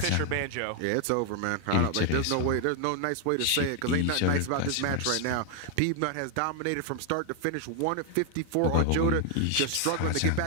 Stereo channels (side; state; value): both; different; correlation 0.00